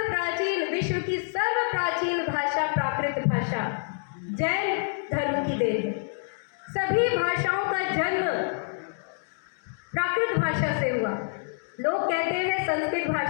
प्राचीन, विश्व की सर्व प्राचीन भाषा प्राकृत भाषा जैन धर्म की देन है। सभी भाषाओं का जन्म प्राकृत भाषा से हुआ। लोग कहते हैं संस्कृत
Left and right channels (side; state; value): right; silent; digital silence